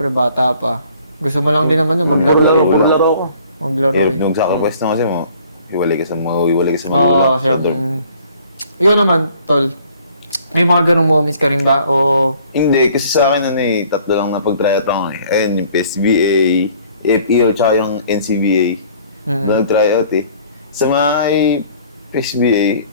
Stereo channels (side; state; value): both; inverted; correlation -0.56